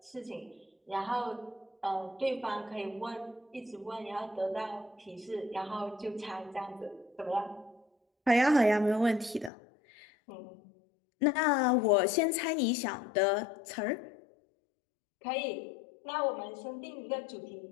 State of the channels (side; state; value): right; drops out; at 9.5 s